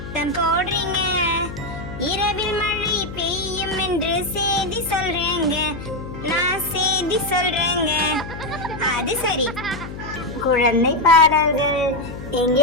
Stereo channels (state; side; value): noise; left; hum, 10 dB below the sound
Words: போடுறீங்க? இரவில் மழை பெய்யும் என்று செய்தி சொல்றேங்க, நான் செய்தி சொல்றேங்க. அது சரி, குழந்தை பாடல்கள்.